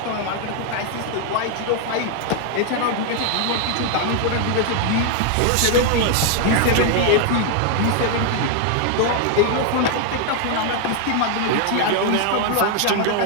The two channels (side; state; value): both; different; correlation 0.00